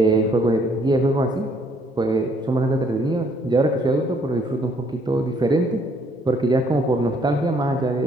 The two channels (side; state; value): both; normal; correlation 0.65